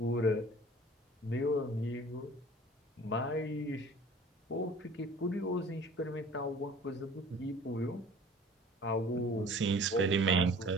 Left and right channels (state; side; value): normal; both; correlation 0.47